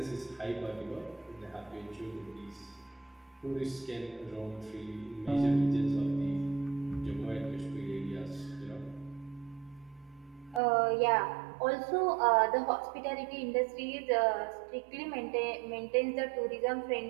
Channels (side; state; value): left; drops out; at 10.6 s